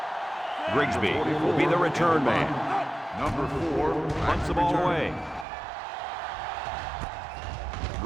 Grigsby will be the return man. Number 4. Punts the ball away.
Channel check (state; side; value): drops out; left; at 5.5 s